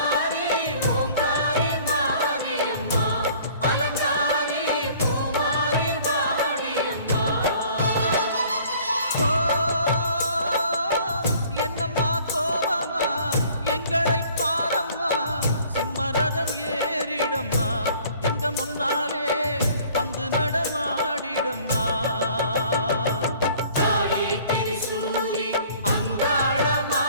ஓங்காரி மாரியம்மா அலங்காரி பூமாரி வாடியம்மா. ஓ என்னம்மா கோவமா எங்களை சிம்மரதம் ஏறிடம்மா எங்க முன்னாலே வந்து நடமாடிடம்மா. தாயே திரிசூலி அங்காள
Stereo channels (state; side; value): inverted; both; correlation -0.53